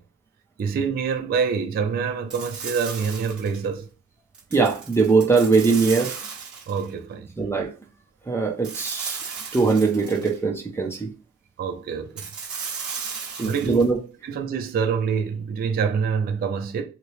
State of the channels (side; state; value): left; quieter; 4.6 dB